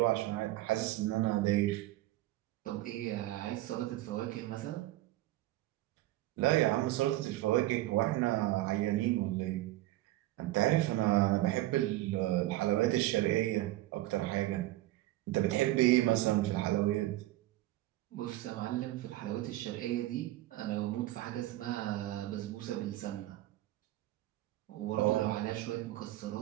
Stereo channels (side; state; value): left; quieter; 16.5 dB